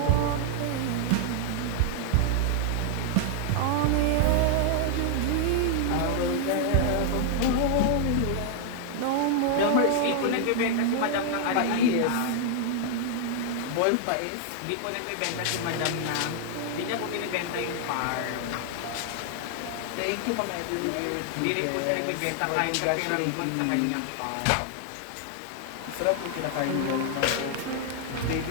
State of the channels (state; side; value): different; both; correlation 0.00